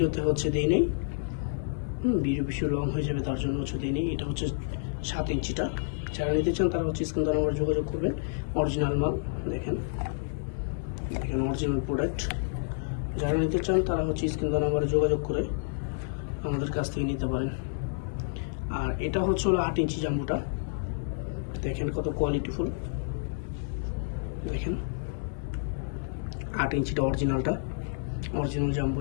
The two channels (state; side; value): silent; right; 56 dB below the other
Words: হচ্ছে দেই নেই। ভিডিও বেশি লং হয়ে যাবে তার জন্য হচ্ছে দিইনি। এটা হচ্ছে 7 ইঞ্চিটা। যারা নিতে চান তারা হচ্ছে স্ক্রিন নাম্বার যোগাযোগ করবেন। অরিজিনাল মাল, দেখেন দেখেন অরিজিনাল প্রোডাক্ট। যারা নিতে চান তারা হচ্ছে স্ক্রিন নাম্বারে যোগাযোগ করে আমাদের কাছ থেকে নিতে পারেন। আর এটা হচ্ছে হলো 8 ইঞ্চি জাম্বুটা, দেখেন কত কোয়ালিটিফুল। দেখেন 8 ইঞ্চিটা অরিজিনালটা, অরিজিনাল